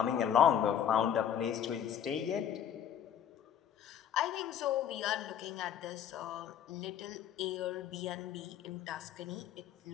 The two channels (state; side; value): quieter; right; 9.4 dB